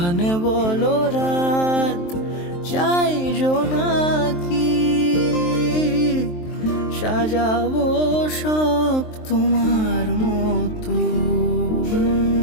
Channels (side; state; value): right; late; 23 ms